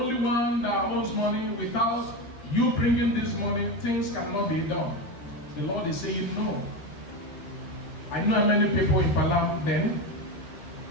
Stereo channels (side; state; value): right; late; 13 ms